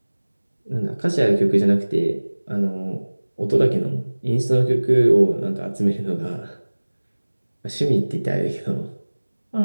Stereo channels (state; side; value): inverted; both; correlation -1.00